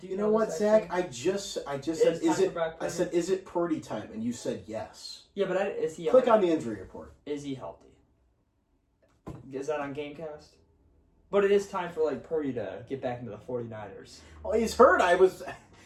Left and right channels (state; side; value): identical; both; correlation 1.00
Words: You know what, this Zach? actually? I just said, It's is time it? for Brock I Purdy. said, is it Purdy time? And you said yes. Yeah, but is he? Click on the injury report. Is he healthy? Is that on Gamecast? But it is time for like Purdy to get back into the 49ers. Oh, he's hurt. I was.